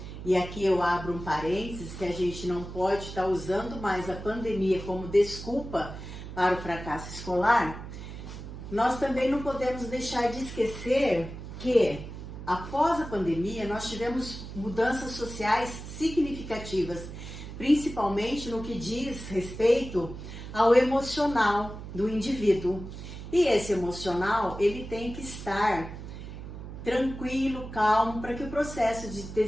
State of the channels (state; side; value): noise; right; hum, 10 dB below the sound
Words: e aqui eu abro um parênteses, que a gente não pode estar usando mais a pandemia como desculpa para o fracasso escolar, nós também não podemos deixar de esquecer que, após a pandemia, nós tivemos mudanças sociais significativas, principalmente no que diz respeito ao emocional do indivíduo. E esse emocional, ele tem que estar tranquilo, calmo, para que o processo de